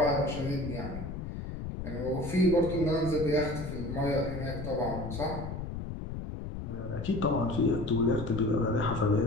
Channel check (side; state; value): left; noise; rumble, 7 dB below the sound